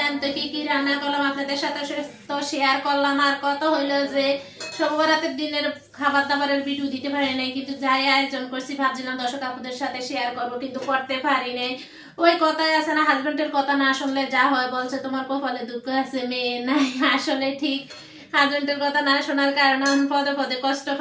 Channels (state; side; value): identical; both; correlation 1.00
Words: তো কি কি রান্না করলাম আপনাদের সাথে তো শেয়ার করলাম। আর কত হইলো যে শবে বরাতের দিনের খাবার দাবারের ভিডিও দিতে পারি নাই, কিন্তু যাই আয়োজন করছি ভাবছিলাম দর্শক আপুদের সাথে শেয়ার করব, কিন্তু করতে পারি নাই। ওই কথাই আছে না, হাজবেন্ডের কথা না শুনলে যা হয়, বলছে তোমার কপালে দুঃখ আছে মেয়ে নাই। আসলে ঠিক, হাজবেন্ডের কথা না শোনার কারণে পদে পদে কষ্ট